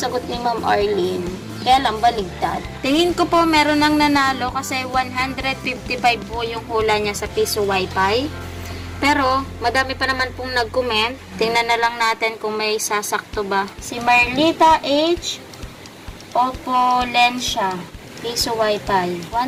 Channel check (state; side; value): identical; both; correlation 1.00